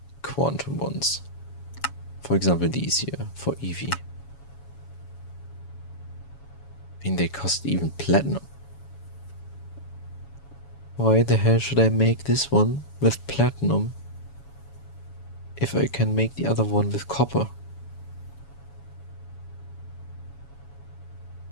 quantum ones, for example, these here for EV, I mean they cost even platinum. Why the hell should I make this one with platinum if I can make the other one with copper?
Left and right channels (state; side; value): late; right; 7.1 ms